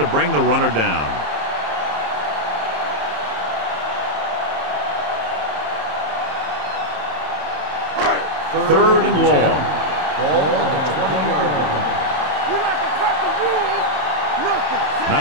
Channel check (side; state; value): left; late; 27 ms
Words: bring the runner down. Third and long. Ball on the 20-yard line. We like to cut the rules. Nothing.